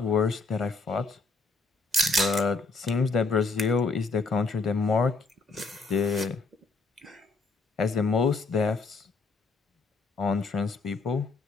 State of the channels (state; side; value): quieter; right; 3.8 dB